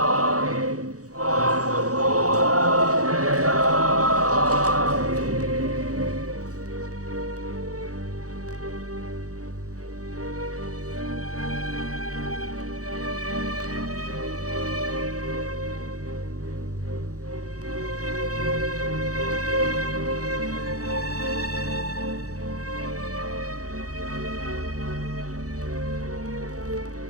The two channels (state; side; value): late; left; 0.66 ms